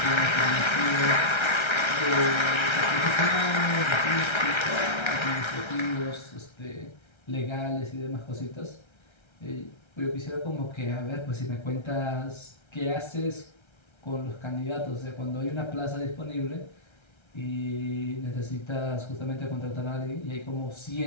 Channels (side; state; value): right; late; 1.3 ms